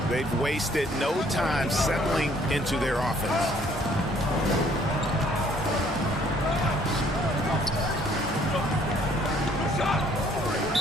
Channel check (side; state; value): both; normal; correlation 0.61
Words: They've wasted no time settling into their offense.